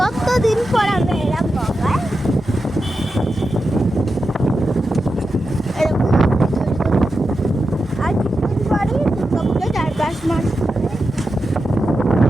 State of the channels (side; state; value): both; normal; correlation 0.90